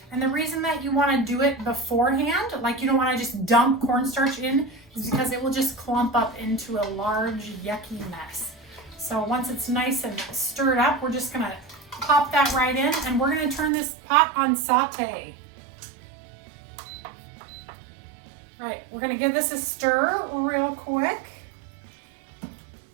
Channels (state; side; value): drops out; left; at 13.7 s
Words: And the reason that you want to do it beforehand, like you don't want to just dump cornstarch in, is because it will just clump up into a large yucky mess. So once it's nice and stirred up, we're just gonna pop that right in, and we're gonna turn this pot on saute. Right, we're gonna give this a stir real quick.